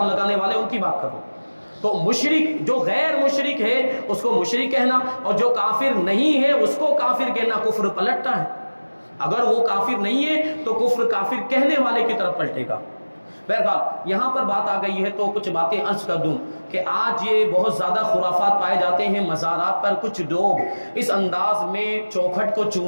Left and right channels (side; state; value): both; inverted; correlation -1.00